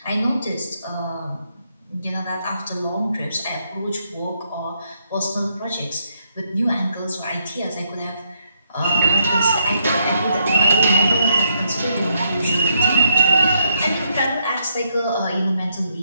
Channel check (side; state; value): both; inverted; correlation -0.77